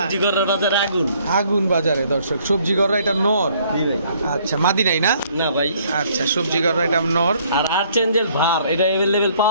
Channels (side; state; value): both; inverted; correlation -0.63